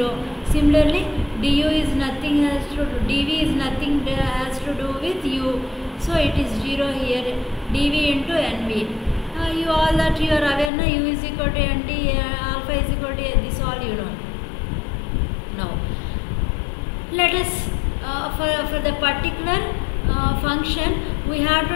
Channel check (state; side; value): drops out; right; at 10.7 s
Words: Similarly, du is nothing has to do, dv is nothing has to do with u, so it is 0 here, dv into nv. You all that you are aware now, u is equal to nt, alpha is equal to this, all you know. Now let us for the particular function we have